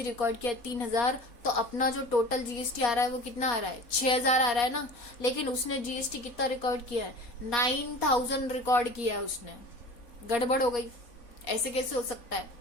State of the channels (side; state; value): right; late; 4.2 ms